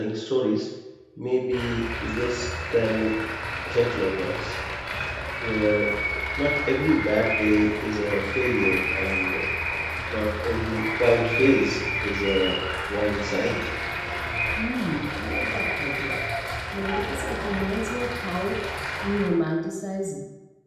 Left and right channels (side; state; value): both; identical; correlation 1.00